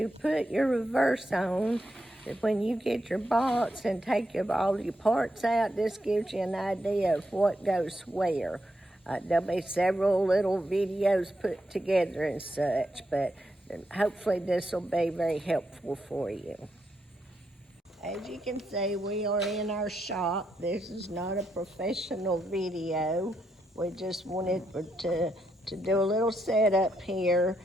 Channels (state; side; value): normal; both; correlation 0.81